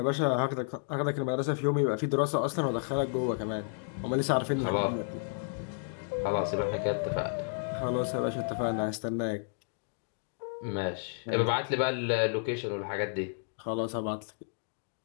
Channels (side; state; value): right; silent; digital silence